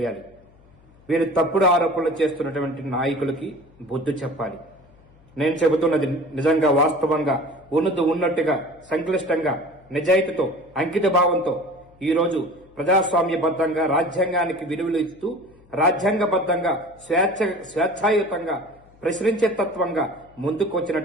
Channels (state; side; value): noise; left; hum, 28 dB below the sound